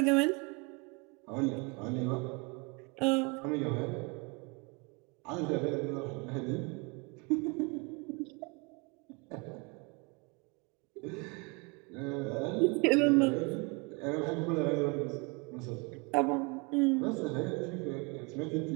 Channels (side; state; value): left; quieter; 29.9 dB